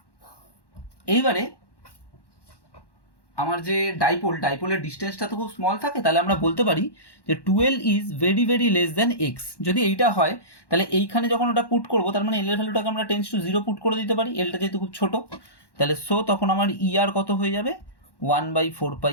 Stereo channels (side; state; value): right; late; 1.1 ms